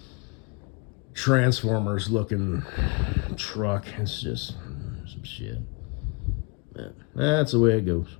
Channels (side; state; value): right; quieter; 31.4 dB